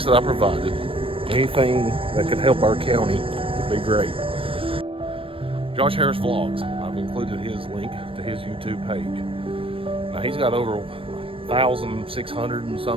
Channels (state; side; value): late; left; 0.26 ms